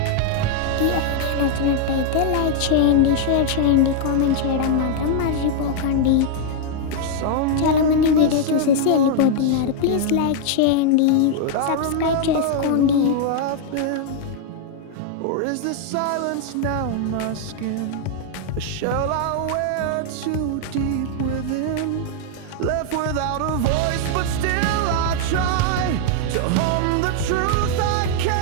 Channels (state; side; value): different; both; correlation 0.00